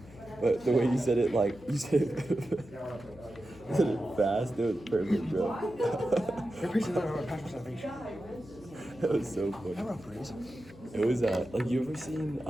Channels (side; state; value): left; noise; hum, 20 dB below the sound